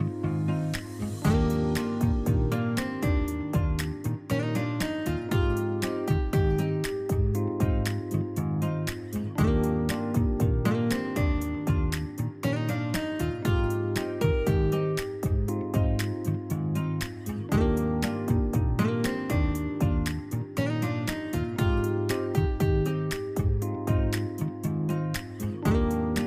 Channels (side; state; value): both; identical; correlation 1.00